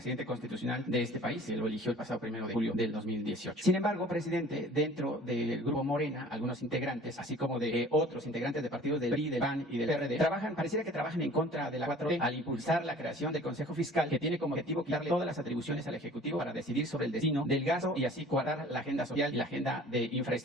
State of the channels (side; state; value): both; normal; correlation 0.48